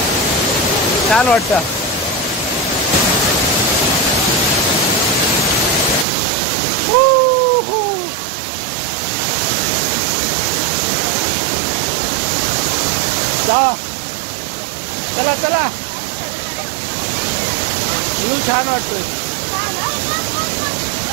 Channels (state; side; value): drops out; left; at 6.1 s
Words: छान वाटतं. जा चला चला. छान वाटतोय.